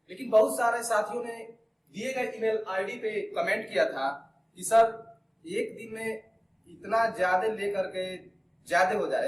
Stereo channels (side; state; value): both; identical; correlation 1.00